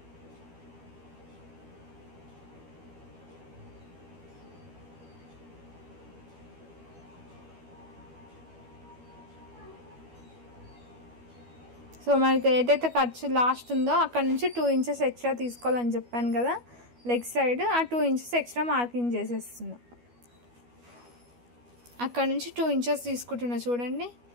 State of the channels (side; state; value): left; late; 12 ms